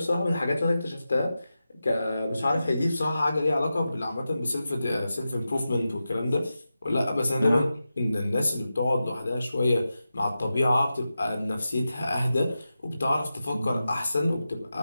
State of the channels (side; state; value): both; inverted; correlation -0.91